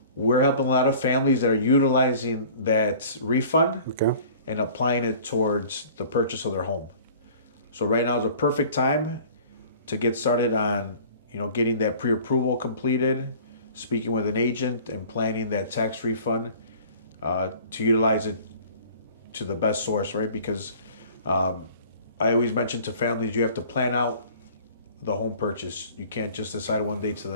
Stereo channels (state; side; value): inverted; both; correlation -0.47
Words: we're helping a lot of families that are utilizing that refund Okay. and applying it towards the purchase of their home. So right now is a perfect time to get started on, getting that pre-approval completed, speaking with an agent and planning that tax refund to utilize it to the best source, right? Because I always mention to families, you have to plan out the home purchase. You can't just decide one day to